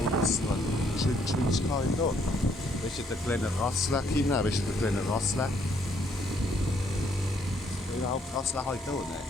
Geschwindigkeit da. Weißt du, der kleine Rassler, Kinder? Weißt du, der kleine Rassler? Überhaupt Rassler heute auch, ne?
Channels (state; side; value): normal; both; correlation 0.69